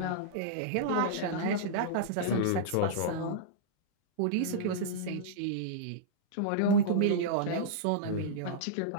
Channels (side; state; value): both; different; correlation -0.03